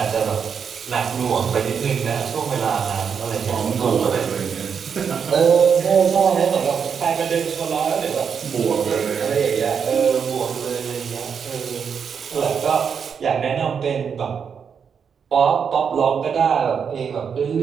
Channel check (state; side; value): quieter; left; 6.8 dB